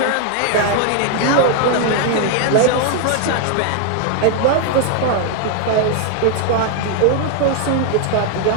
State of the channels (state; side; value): different; both; correlation 0.00